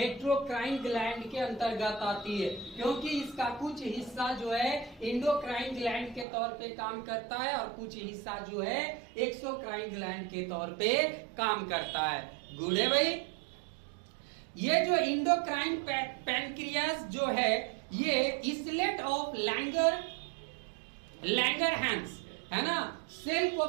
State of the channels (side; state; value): left; drops out; at 6.2 s